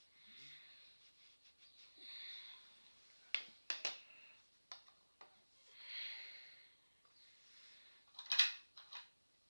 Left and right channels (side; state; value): both; inverted; correlation -1.00